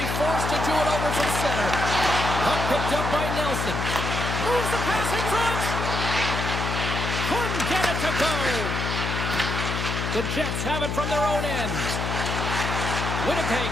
forced to do it over from center. Puck picked up by Nelson. Moves the pass in front. Couldn't get it to go. The Jets have it from their own end.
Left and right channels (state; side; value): noise; left; hum, 2 dB below the sound